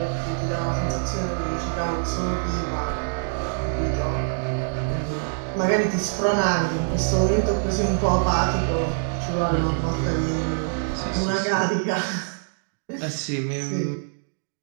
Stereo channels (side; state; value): left; silent; digital silence